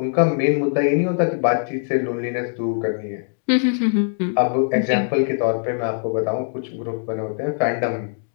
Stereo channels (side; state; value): right; silent; digital silence